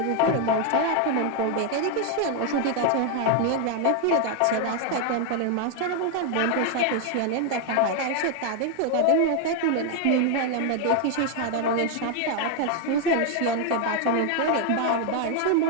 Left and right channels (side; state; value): both; different; correlation 0.01